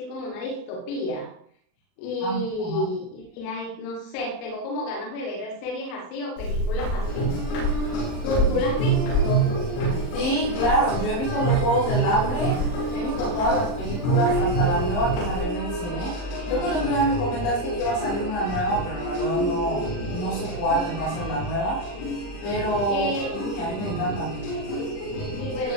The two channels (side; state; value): right; late; 40 ms